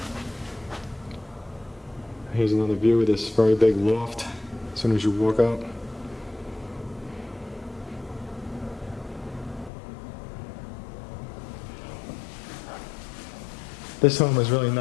Here's another view of this very big loft as soon as you walk out. This home is really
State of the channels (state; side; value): drops out; right; at 9.7 s